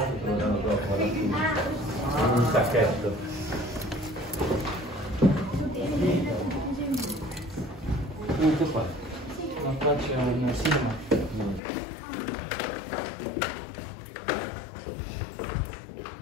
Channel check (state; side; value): drops out; right; at 11.6 s